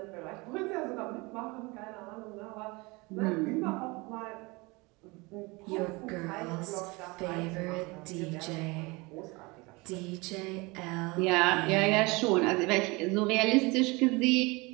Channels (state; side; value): quieter; left; 25.3 dB